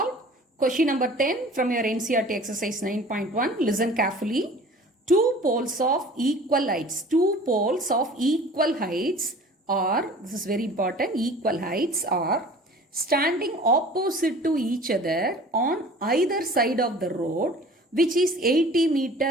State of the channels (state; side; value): normal; both; correlation 0.45